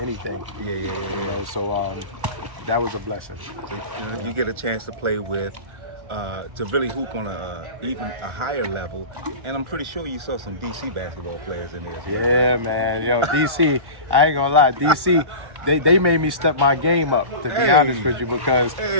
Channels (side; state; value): left; late; 1.1 ms